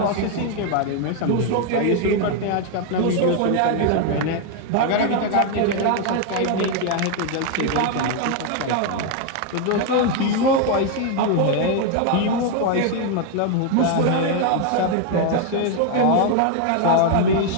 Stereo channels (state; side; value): different; both; correlation 0.01